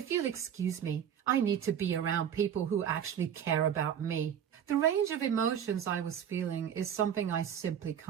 you'll excuse me, I need to be around people who actually care about me. The range of emotions I was feeling is something I simply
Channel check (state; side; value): quieter; left; 8.9 dB